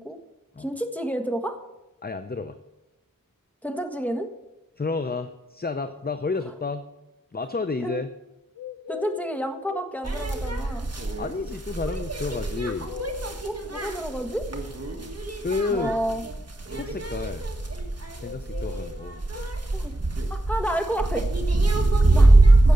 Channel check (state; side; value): normal; both; correlation 0.84